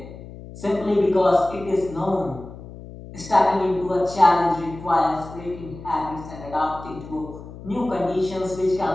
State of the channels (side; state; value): left; noise; hum, 15 dB below the sound